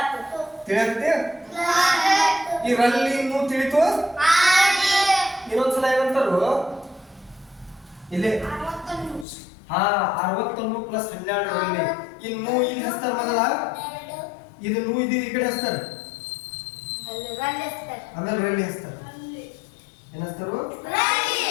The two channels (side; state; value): right; drops out; at 9.2 s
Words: ತಿಳಿಯತ್ತೆ ಇದರಲ್ಲಿ ಇನ್ನೂ ತಿಳಿತು ಇನ್ನೊಂದ್ಸಲ ಏನಂತಾರು ಇಲ್ಲಿ 61 ಪ್ಲಸ್ 12 ರಲ್ಲಿ ಇನ್ನು ಇಲ್ಲಿ ಹಸ್ತಾರ ಮೊದಲ ಇದು ನೂ ಇದು ಈ ಕಡೆ ಹಸ್ತಾರ ಆಮೇಲೆ ರಲ್ಲಿ ಹಸ್ತಾರ ಏನ್ ಹಸ್ತಾರು